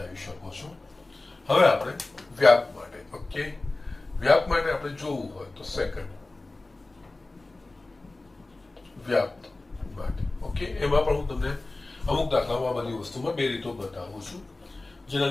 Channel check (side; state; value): right; quieter; 3.1 dB